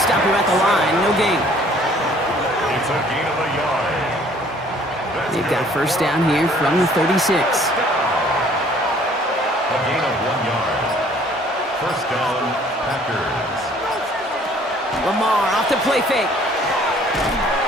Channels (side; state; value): both; normal; correlation 0.57